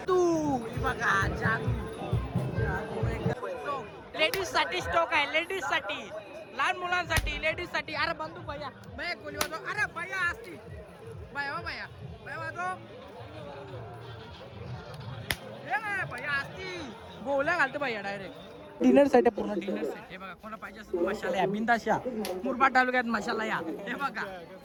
तू बघा लेडीज साठी स्टॉक आहे, लेडीज साठी, लहान मुलांसाठी, लेडीज साठी. अरे बंदूक भैया भैया गोली वाजव. अरे भैया असती भैया भैया भैया वाजव. भैया असती गोल्या घालतो भैया डायरेक्ट. डिनर सेट आहे, पूर्ण डिनर सेट. हे बघा कोणा पाहिजे असेल मशाला या बिंदाशा. मुरबाड तालुक्यात मशाला या. हे बघा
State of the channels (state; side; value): identical; both; correlation 1.00